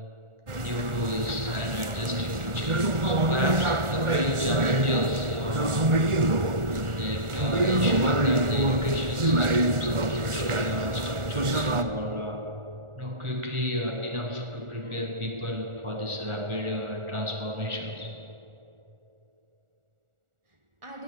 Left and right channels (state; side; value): late; left; 1.4 ms